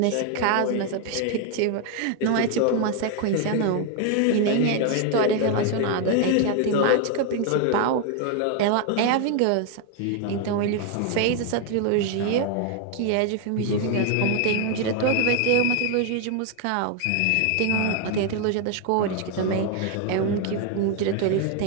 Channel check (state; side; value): different; both; correlation 0.01